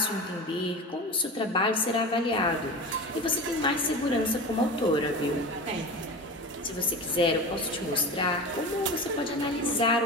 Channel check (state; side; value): normal; both; correlation 0.30